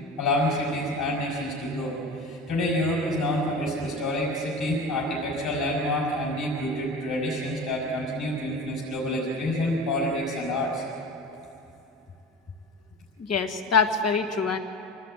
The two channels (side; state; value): both; normal; correlation 0.33